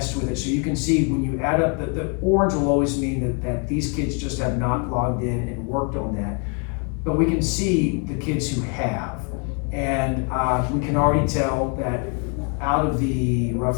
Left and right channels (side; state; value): right; quieter; 36.5 dB